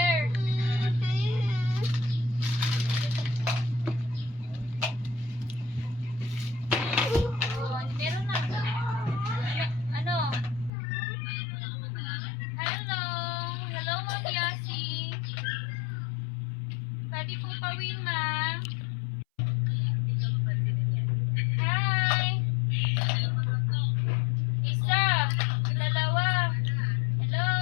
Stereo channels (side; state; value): right; drops out; at 10.7 s